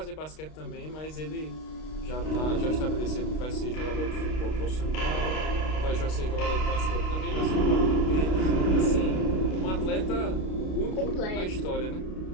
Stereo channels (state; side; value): late; right; 32 ms